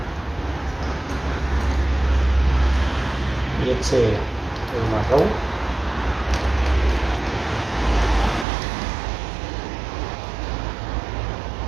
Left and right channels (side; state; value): left; drops out; at 8.5 s